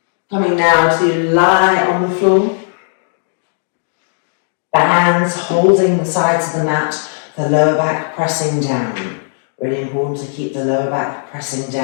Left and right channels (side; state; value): right; silent; digital silence